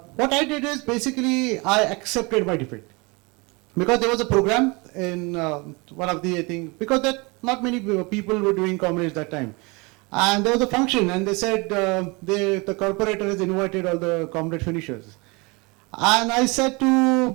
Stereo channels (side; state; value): left; quieter; 27.4 dB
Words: I did is basically I accepted my defeat. Because there was a program in one of the, I think, because that not many people were doing Comrades that time. And there was a function and they said the corporator has invited all the Comrade finishers. And I said to